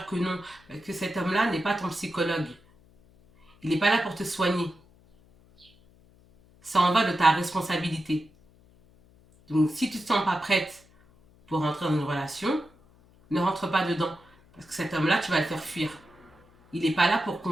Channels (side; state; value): left; noise; hum, 29 dB below the sound